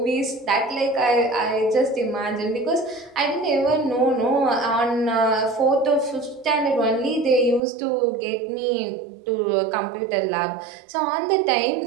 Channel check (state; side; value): drops out; left; at 7.6 s